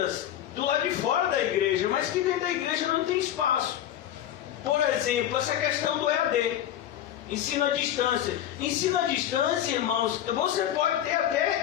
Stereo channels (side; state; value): right; quieter; 11.3 dB